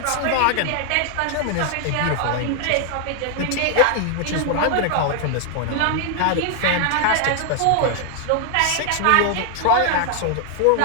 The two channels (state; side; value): different; both; correlation 0.00